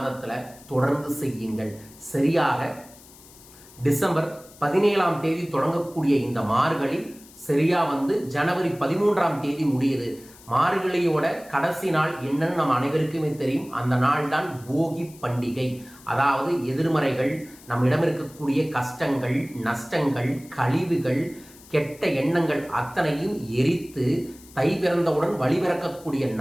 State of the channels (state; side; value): noise; left; hiss, 22 dB below the sound